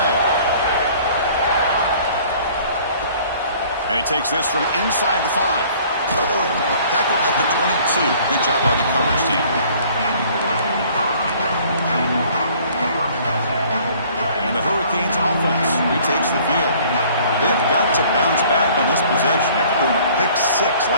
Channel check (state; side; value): inverted; both; correlation -0.54